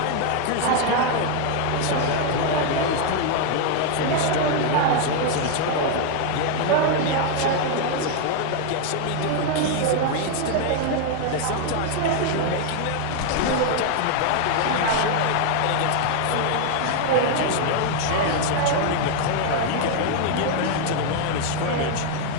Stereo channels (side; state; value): both; different; correlation 0.00